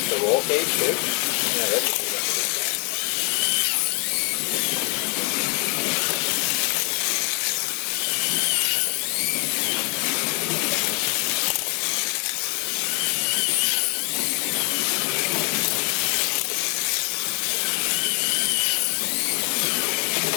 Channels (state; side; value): quieter; right; 36.5 dB